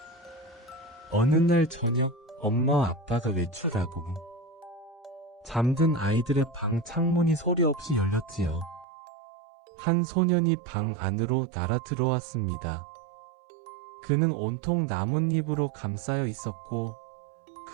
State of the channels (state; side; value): drops out; left; at 8.8 s